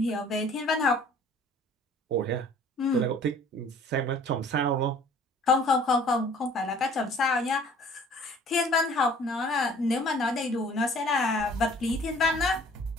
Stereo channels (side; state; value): both; normal; correlation 0.52